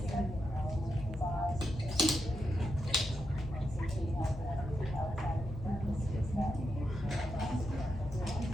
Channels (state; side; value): normal; both; correlation 0.85